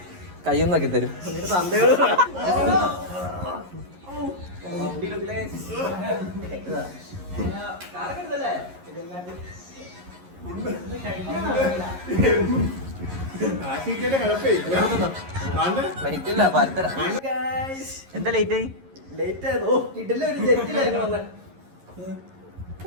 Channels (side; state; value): left; late; 11 ms